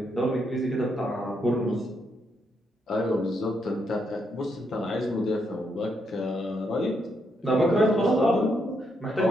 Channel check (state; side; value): normal; both; correlation 0.78